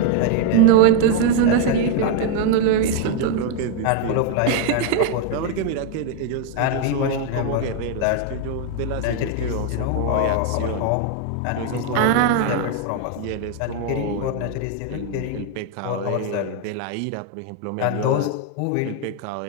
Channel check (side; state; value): both; different; correlation 0.00